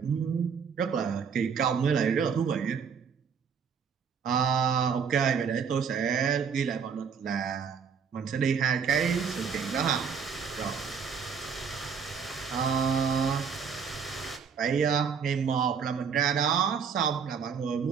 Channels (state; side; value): quieter; left; 6.6 dB